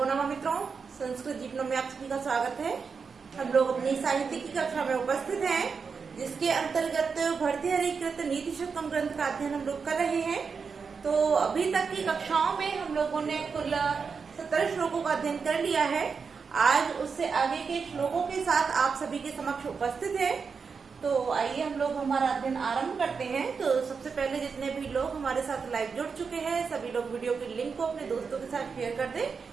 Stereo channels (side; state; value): left; quieter; 5.5 dB